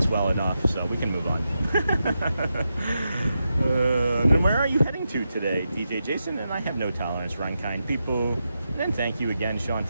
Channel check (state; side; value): inverted; both; correlation -0.87